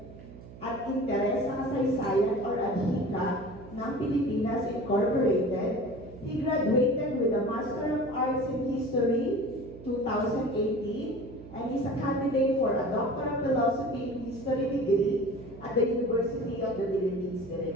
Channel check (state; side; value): noise; right; hum, 17 dB below the sound